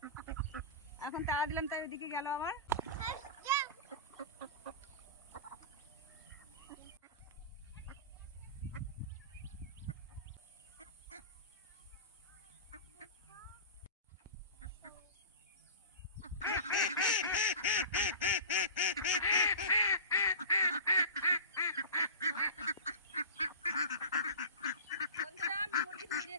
এখন তাড়া দিলাম, তাই ওদিকে গেল আবার।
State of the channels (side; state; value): both; inverted; correlation -0.32